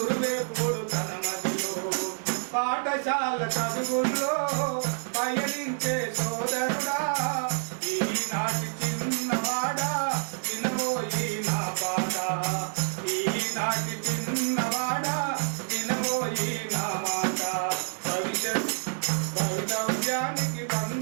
తన మదిలో పాఠశాల చదువుల్లో పయనించే సోదరుడా ఈనాటి చిన్నవాడా వినబోయి నా పాట ఈనాటి చిన్నవాడా వినబోయి నా మాట భవితవ్యానికి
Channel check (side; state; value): left; silent; digital silence